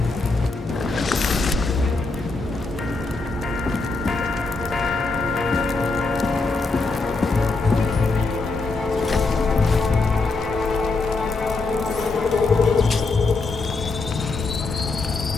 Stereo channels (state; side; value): quieter; right; 3.7 dB